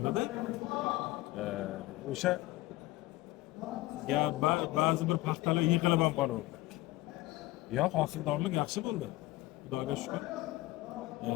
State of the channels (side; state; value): right; quieter; 18.5 dB